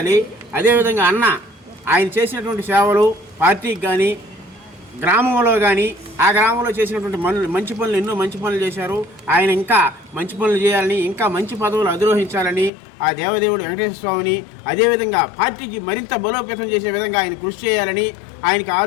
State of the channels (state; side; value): drops out; right; at 12.7 s